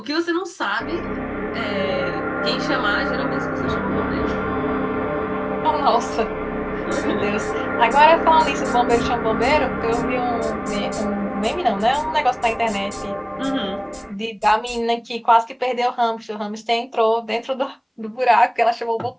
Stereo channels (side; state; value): both; identical; correlation 1.00